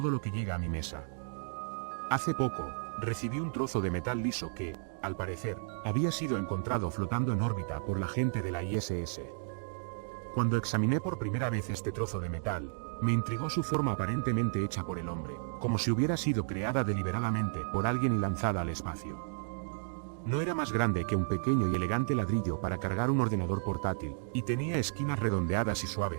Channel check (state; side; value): silent; left; digital silence